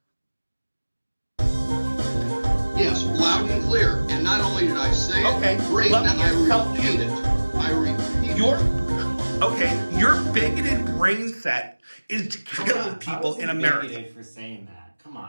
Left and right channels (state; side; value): inverted; both; correlation -1.00